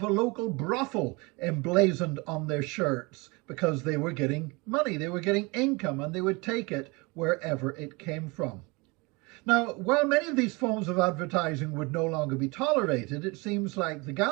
a local brothel emblazoned on their shirts because they were getting money, they were getting income, and they would take it wherever it came from. Now, while many of these forms of advertising would no longer be tolerated, it seems like the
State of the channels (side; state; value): left; quieter; 26.7 dB